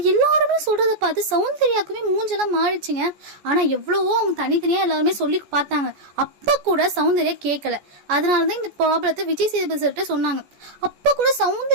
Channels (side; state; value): left; late; 14 ms